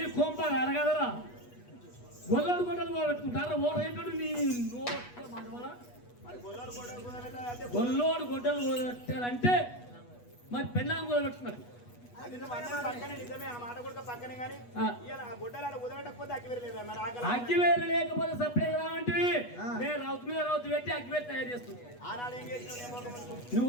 కొంప అరగదరా గొల్లడు గొడ్డలు పెట్టుకుంటారా ఓ రేటు నీ గొల్లోడు గొడ్డలు పెట్టారంటే మరి పెళ్ళాం కూడా పెట్టుకున్నారు అగ్గివేరు లేకపోతే సపరేట్ రావంటే నేను రౌతు మీద రౌతు పెట్టి అగ్గివేరు తయారు చేస్తాను నువ్వు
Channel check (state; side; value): late; right; 8.2 ms